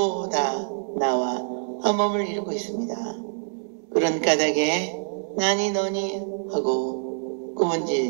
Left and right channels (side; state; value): left; silent; 62 dB below the other